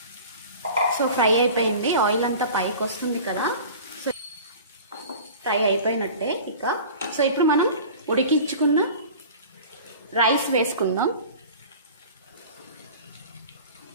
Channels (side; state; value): both; inverted; correlation -0.40